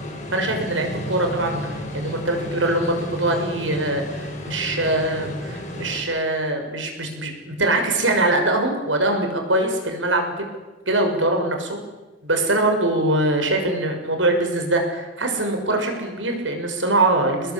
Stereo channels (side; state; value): both; normal; correlation -0.04